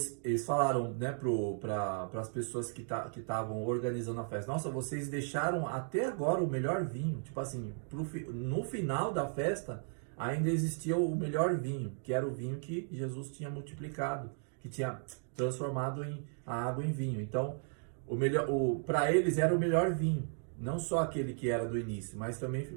eles falaram, né, para as pessoas que estavam organizando a festa, nossa, vocês deixaram até agora o melhor vinho. Tipo assim, no final da festa, ainda existia o melhor vinho, que era o vinho que Jesus tinha multiplicado, que tinha transformado a água em vinho. Então, para eles era o melhor vinho, não só aquele que era do início, mas também,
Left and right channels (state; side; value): silent; left; 54 dB below the other